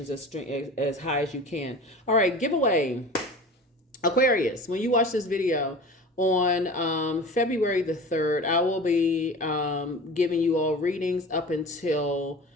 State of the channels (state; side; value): normal; both; correlation 0.37